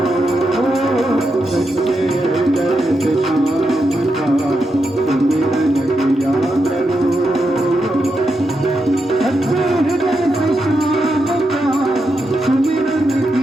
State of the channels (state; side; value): normal; both; correlation 0.85